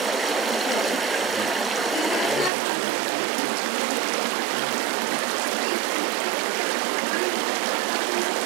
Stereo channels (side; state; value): left; drops out; at 2.5 s